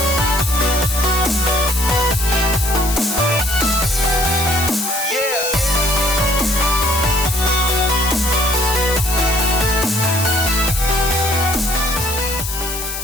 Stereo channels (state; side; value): noise; left; hiss, 6 dB below the sound